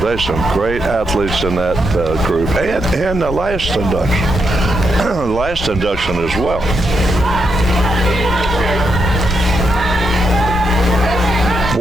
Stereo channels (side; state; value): left; noise; rumble, 9 dB below the sound